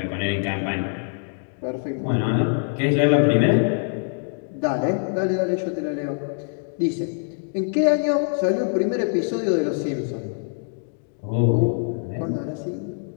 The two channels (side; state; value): right; silent; digital silence